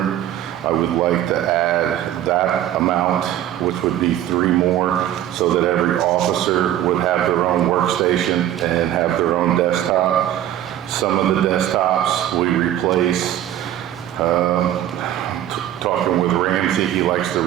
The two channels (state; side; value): quieter; left; 12.0 dB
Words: I would like to add that amount, which would be 3 more, so that every officer would have their own workstation and have their own desktop. Some of the desktops we replace. Talking with Ramsey, he likes to